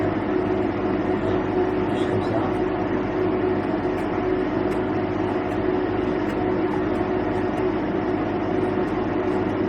Juste comme ça.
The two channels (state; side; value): identical; both; correlation 1.00